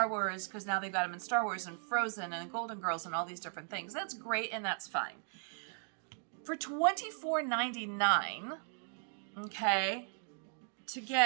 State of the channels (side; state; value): left; silent; 53 dB below the other